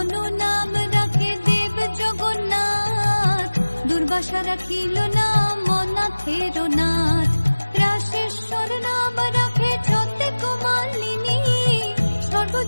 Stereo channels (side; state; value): both; inverted; correlation -1.00